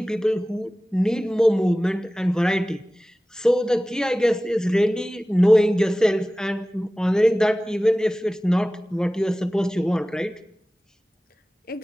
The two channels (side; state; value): both; normal; correlation 0.97